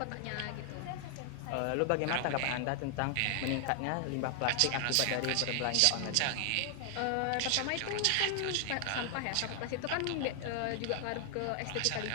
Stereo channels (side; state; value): both; different; correlation 0.00